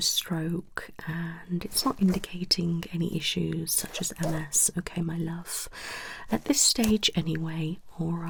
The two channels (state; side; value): identical; both; correlation 1.00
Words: stroke and it's not indicating any issues such as MS. Okay, my love. At this stage, anyway, all